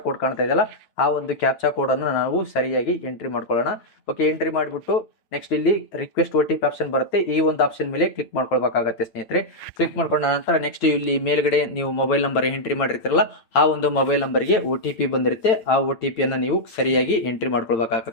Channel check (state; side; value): late; right; 8.9 ms